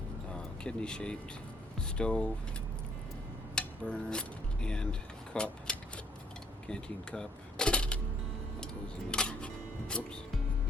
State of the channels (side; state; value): both; normal; correlation 0.65